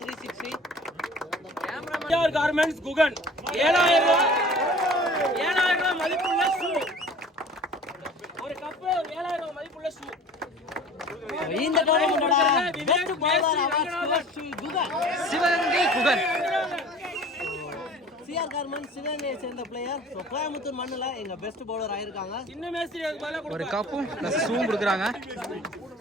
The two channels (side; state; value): both; normal; correlation 0.44